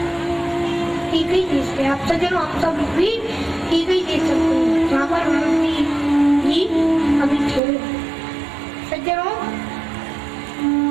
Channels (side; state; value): left; drops out; at 7.6 s